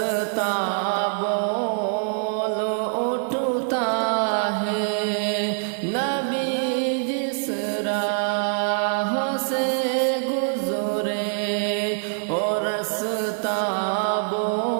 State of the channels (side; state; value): left; silent; digital silence